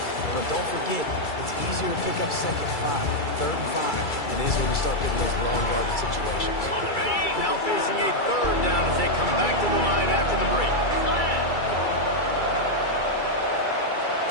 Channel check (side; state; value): right; late; 2.3 ms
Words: But don't forget, it's easier to pick up 2nd 5, 3rd and 5 than it is when you start getting those long yardage situations. Now facing a 3rd down as they come back to the line after the break.